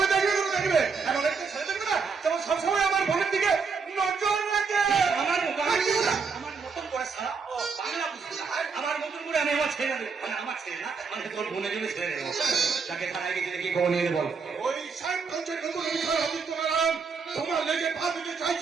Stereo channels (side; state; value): left; quieter; 5.2 dB